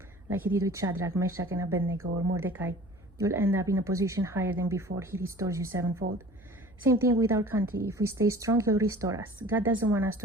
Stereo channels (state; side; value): noise; right; hum, 26 dB below the sound